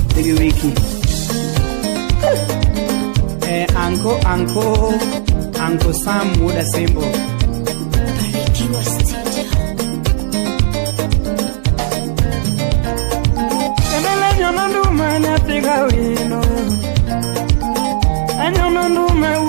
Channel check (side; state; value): left; silent; digital silence